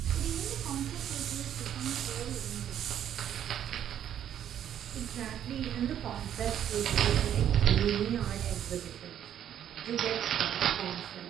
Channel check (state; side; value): quieter; left; 10.2 dB